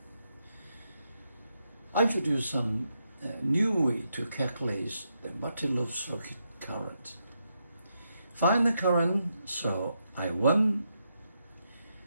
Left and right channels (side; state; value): both; inverted; correlation -0.82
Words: I introduce some new way to calculate the multi-loop circuit current. Find the current through I1,